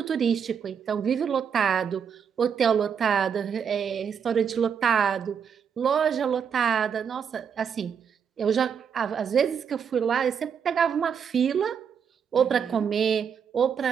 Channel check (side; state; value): left; quieter; 7.2 dB